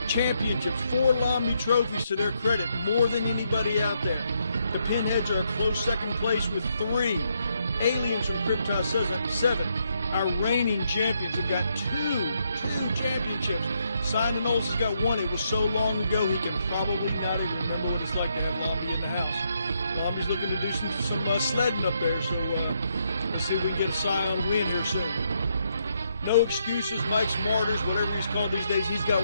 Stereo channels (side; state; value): both; inverted; correlation -0.77